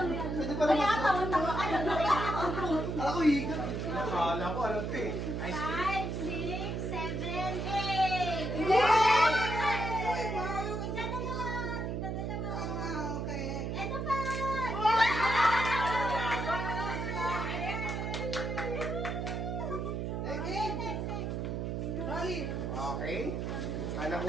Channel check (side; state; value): right; noise; hum, 2 dB below the sound